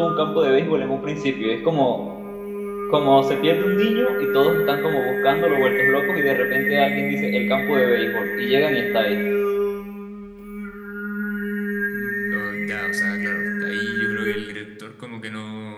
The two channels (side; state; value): both; identical; correlation 1.00